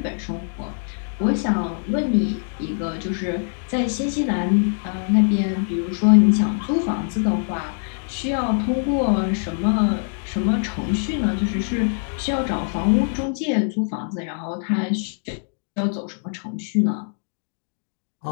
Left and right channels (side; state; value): right; silent; digital silence